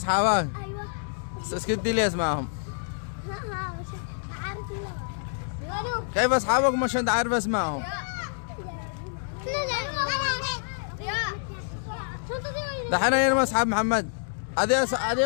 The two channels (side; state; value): right; silent; 60 dB below the other